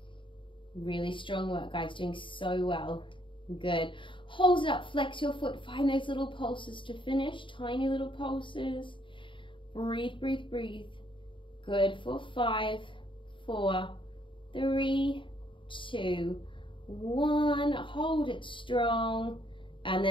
Really strong work, guys. Doing so well. Good. Hold it up. Flex your foot. Find those little pulses to finish. Tiny little pulses. Breathe, breathe, breathe. Good. For 5, 4, 3, 2, 1. Hold it strong. And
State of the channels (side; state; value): right; late; 0.24 ms